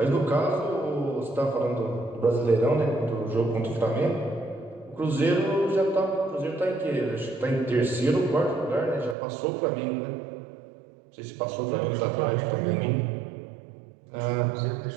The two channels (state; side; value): drops out; left; at 9.2 s